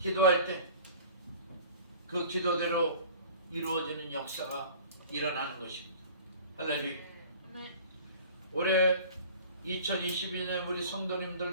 때 그 기도대로 이루어지는 역사가 일어나는 것입니다. 할렐루야. 올해 2022년 우리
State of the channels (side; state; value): both; inverted; correlation -0.44